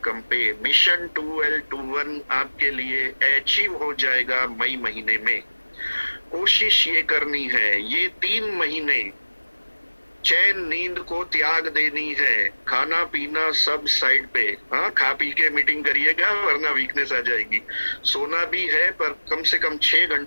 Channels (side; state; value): both; inverted; correlation -1.00